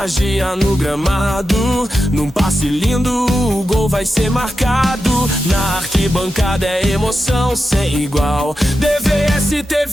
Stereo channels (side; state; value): both; normal; correlation 0.90